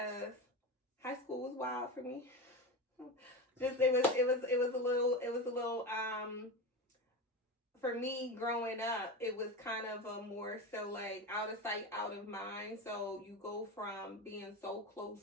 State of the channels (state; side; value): normal; both; correlation 0.22